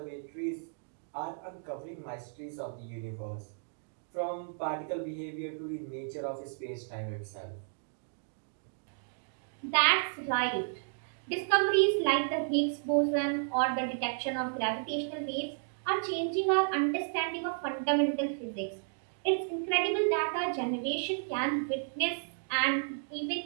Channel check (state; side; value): silent; left; digital silence